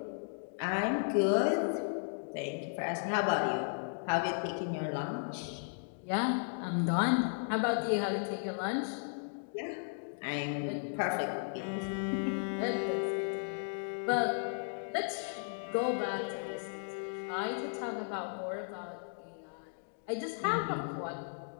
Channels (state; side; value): silent; right; digital silence